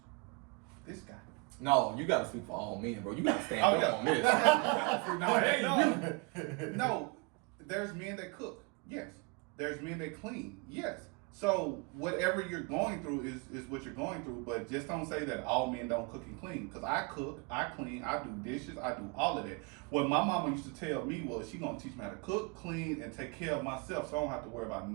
This guy. No, you gotta speak for all men, bro. You gotta stand Oh, up yeah. on this. No, hey, you. No, there's men that cook. Yes. There's men that clean. Yes. So whatever you're going through is what you're going through, but just don't say that all men don't cook and clean. Because I cook, I clean, I do dishes, I do all of that. What my mama used to tell me was she gonna teach me how to cook, clean, and take care of myself, so I don't have to worry about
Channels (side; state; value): left; quieter; 30.9 dB